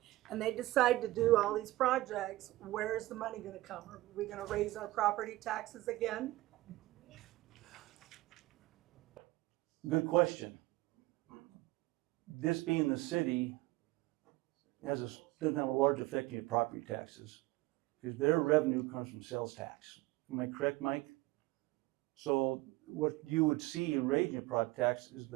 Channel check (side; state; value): left; quieter; 18.4 dB